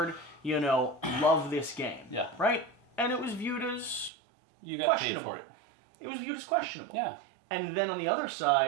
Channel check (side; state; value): left; drops out; at 4.1 s